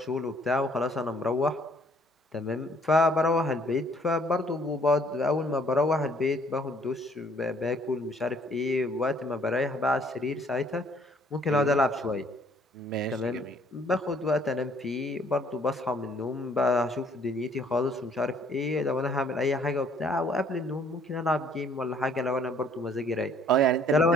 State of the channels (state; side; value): normal; both; correlation 0.61